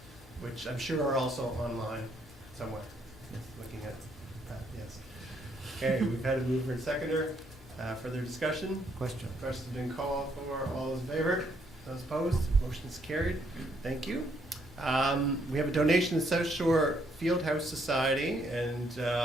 which I'm sure are also online somewhere. Yes, looking at that, yes. Okay, we've had a mover and seconder. Further discussion? Question. Question's been called for. All those in favor? Those opposed? Motion is carried. Thank you. We have a donation to South Shore Fieldhouse Society, and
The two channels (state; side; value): normal; both; correlation 0.71